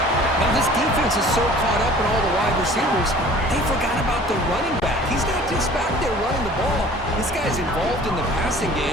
Now, this defense is so caught up in all the wide receivers, they forgot about the running back. He's not just back there running the ball. This guy's involved in the passing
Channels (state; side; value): normal; both; correlation 0.48